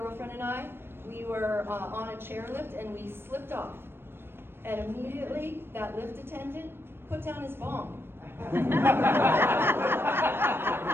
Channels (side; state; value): left; late; 0.11 ms